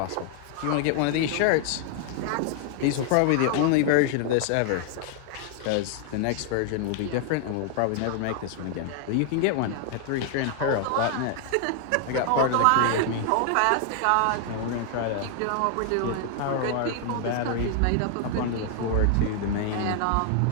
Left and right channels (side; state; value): both; different; correlation 0.00